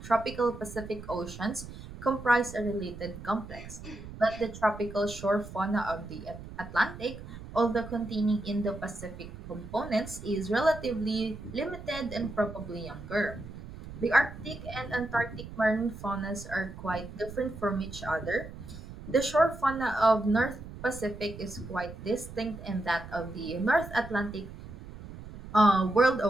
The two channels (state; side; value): noise; right; rumble, 13 dB below the sound